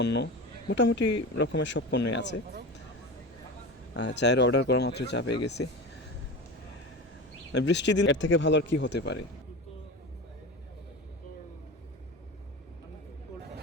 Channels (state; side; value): normal; both; correlation 0.28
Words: মোটামুটি রকমের সব পণ্যই আছে। চায়ের অর্ডার করা মাত্র চা পেয়ে গেছি। বৃষ্টির দিন এর থেকে ভালো আর কি হতে পারে।